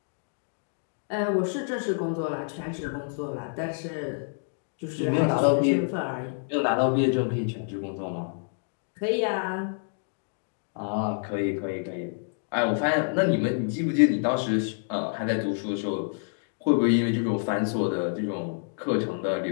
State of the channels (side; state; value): right; silent; digital silence